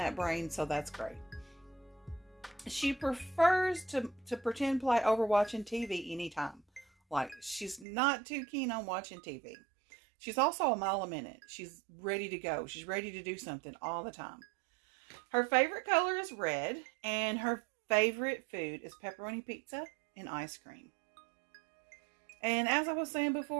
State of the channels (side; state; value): left; drops out; at 7.9 s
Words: brain, so that's great. She prefers to pretend play over watching TV anytime. Like, she's not too keen on watching TV. She's also a mile a minute. She's ready to go. She's ready to do something all the time. Her favorite color is red, and her favorite food is pepperoni pizza and ice cream. And as I was saying